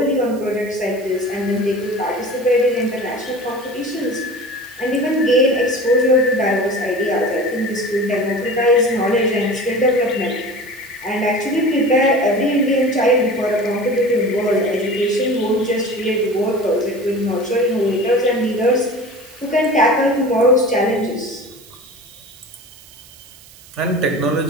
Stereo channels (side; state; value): right; noise; hiss, 22 dB below the sound